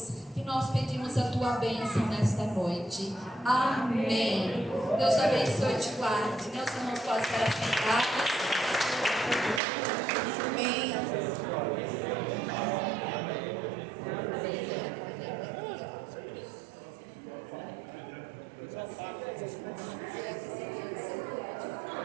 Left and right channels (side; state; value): left; drops out; at 9.6 s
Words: que nós pedimos a tua bênção nesta noite. Amém. Deus abençoe e te guarde. Meus irmãos podem estar sentados. Amém.